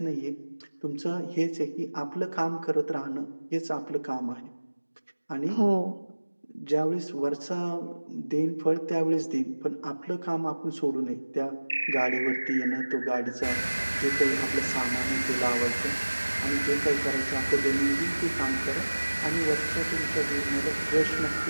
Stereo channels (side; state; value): both; inverted; correlation -1.00